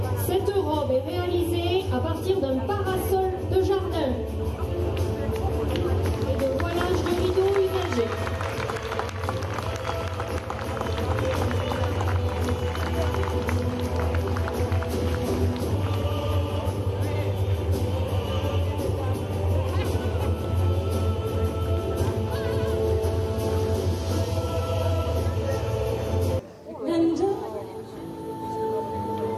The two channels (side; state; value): both; identical; correlation 1.00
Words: Cette robe est réalisée à partir d'un parasol de jardin et de voilage de rideaux usagés.